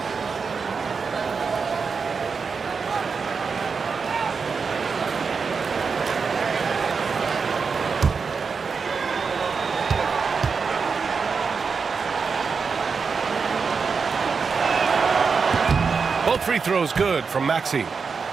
Both free throws good from Maxey.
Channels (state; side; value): quieter; left; 5.3 dB